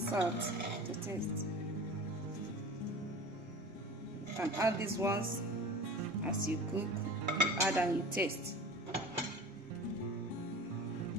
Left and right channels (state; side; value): normal; both; correlation 0.38